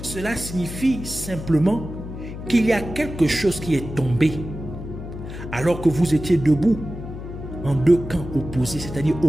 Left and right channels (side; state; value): left; noise; hum, 9 dB below the sound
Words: cela signifie simplement qu'il y a quelque chose qui est tombé alors que vous étiez debout en deux camps opposés, c'est-à-dire